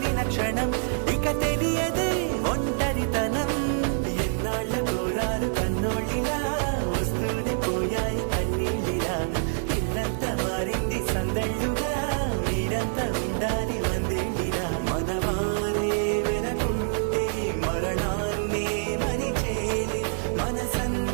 క్షణం ఇక తెలియదే ఒంటరితనం. ఎన్నాళ్ళ కోరాలు కన్నోళ్ళిలా వస్తూనే పోయాయి కన్నీళ్ళిలా. ఇల్లంతా మారింది సందళ్ళుగా మీరంతా ఉండాలి వందేళ్ళిలా. మనవారే వెనకుంటే మరణాన్నే మరిచేలే.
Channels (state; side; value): silent; left; digital silence